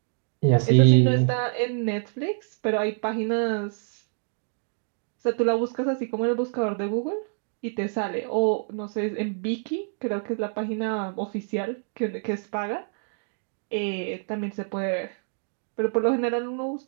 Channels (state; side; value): silent; left; digital silence